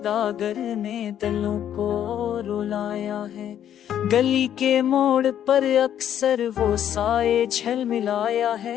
ने दिलों को रुलाया है। गली के मोड़ पर अक्सर वो साए झलमिलाया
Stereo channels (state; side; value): quieter; right; 10.2 dB